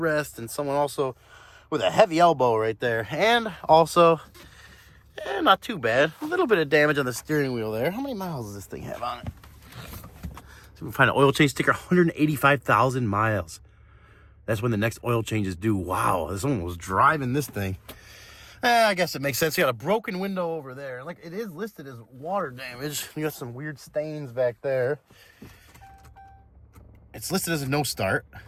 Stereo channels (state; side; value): identical; both; correlation 1.00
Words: and someone also with a heavy elbow right there, and also not too bad, a little bit of damage on the steering wheel there. How many miles does this thing have on it? So we find an oil change sticker, 185,000 miles. That's when the next oil change is due. Wow, someone was driving this thing. I guess it makes sense. You got a broken window over there. Like, it is listed as water damage. You got some weird stains back there. It's listed as a no start,